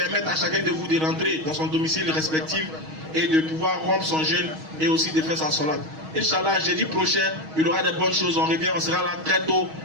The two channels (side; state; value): left; late; 6.3 ms